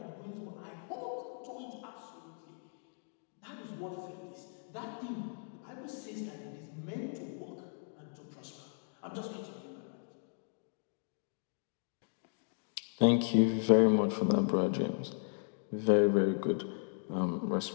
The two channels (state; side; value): silent; right; 54 dB below the other